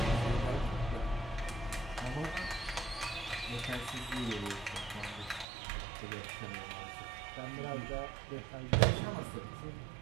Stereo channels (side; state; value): left; drops out; at 5.5 s